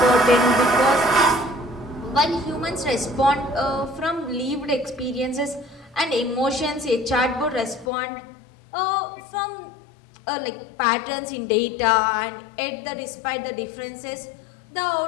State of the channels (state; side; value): drops out; right; at 7.9 s